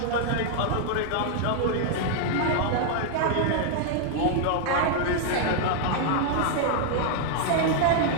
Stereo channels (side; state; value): both; different; correlation 0.00